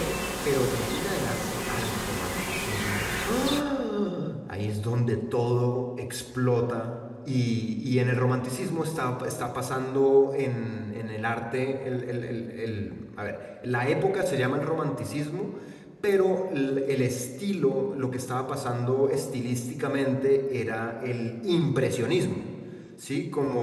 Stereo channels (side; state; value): both; identical; correlation 1.00